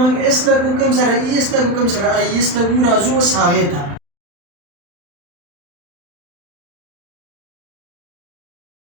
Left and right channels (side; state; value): left; late; 35 ms